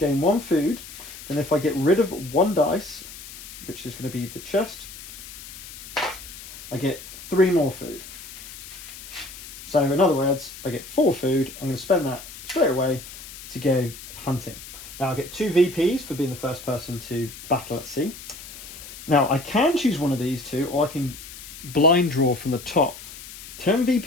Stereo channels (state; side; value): noise; left; hiss, 14 dB below the sound